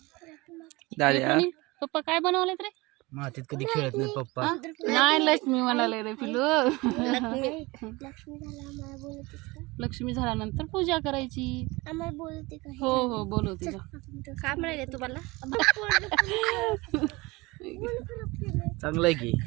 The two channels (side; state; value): left; quieter; 23.1 dB